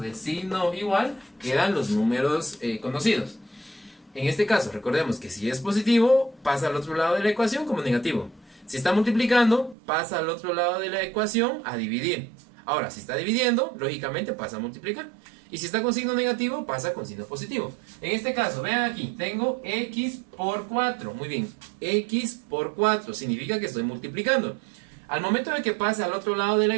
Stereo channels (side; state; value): left; drops out; at 9.8 s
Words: signo igual quedan los números conocidos. En este caso, recordemos que si es positivo, pasa al otro lado de la ecuación como negativo. Si está multiplicando, pasa al otro lado de la ecuación a dividir. Ahora, si está dividiendo, lógicamente pasa a multiplicar. Y si está con signo negativo, pasa con signo positivo. En este caso, vean aquí, tengo X por 4. Muy bien, X por 4 significa que estoy multiplicando. Al momento de que pase al otro lado de la